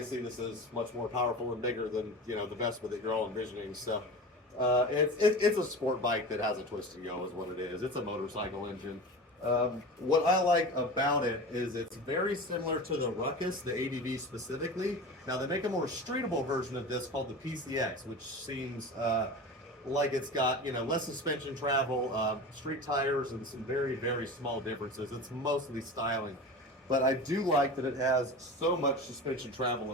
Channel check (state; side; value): normal; both; correlation 0.31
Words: this is much more powerful and bigger than the Vespa that you're all envisioning. So it's a sport bike that has a twist and go, is what it is. It's a motorcycle engine. What I like about it is it's very similar to the Ruckus, the ADV specifically. Now they make a more streetable version of this called the PCX, which seems like it's got less suspension travel, street tires, and some very, very small differences. It's mostly styling, but I do like that it has so much suspension travel